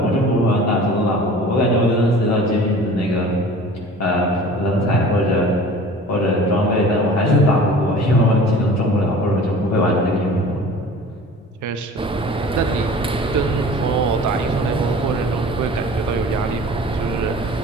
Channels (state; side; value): normal; both; correlation 0.43